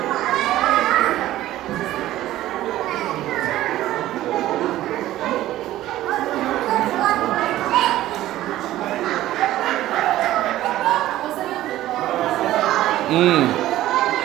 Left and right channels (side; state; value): left; quieter; 14.7 dB